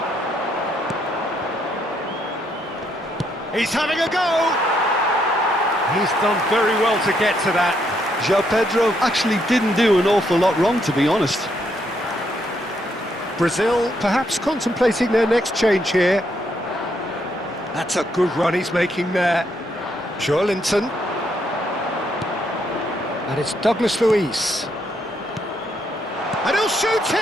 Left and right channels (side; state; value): both; normal; correlation 0.75